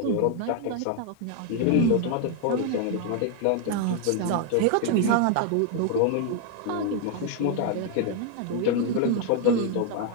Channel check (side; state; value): both; different; correlation 0.01